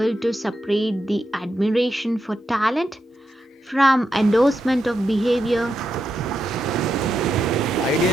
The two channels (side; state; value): both; normal; correlation 0.85